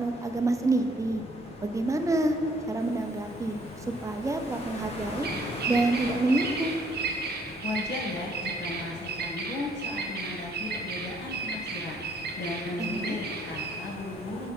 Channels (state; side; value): normal; both; correlation 0.65